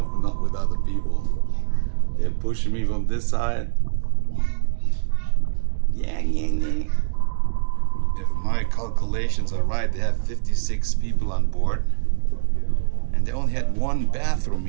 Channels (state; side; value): silent; left; digital silence